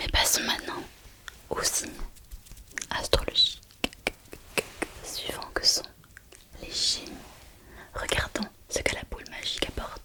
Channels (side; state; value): both; identical; correlation 1.00